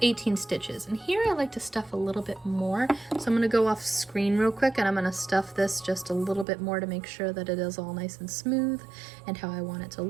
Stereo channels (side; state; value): left; drops out; at 6.5 s